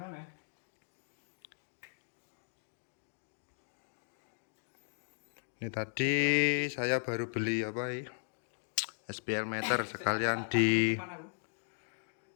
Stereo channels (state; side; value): silent; right; digital silence